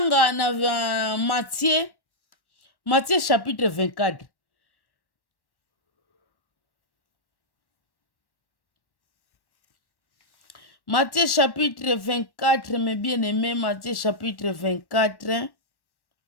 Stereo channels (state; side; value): late; right; 1.1 ms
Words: na Matthieu chapitre 24. Matthieu chapitre 24, mes bien-aimés, Matthieu chapitre 24,